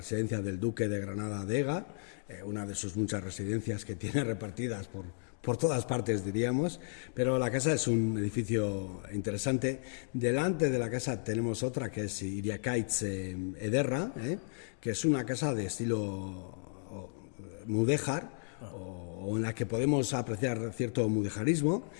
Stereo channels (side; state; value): right; silent; digital silence